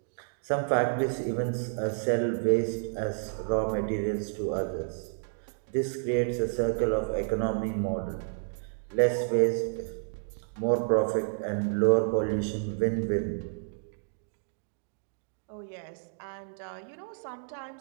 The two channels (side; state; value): left; silent; digital silence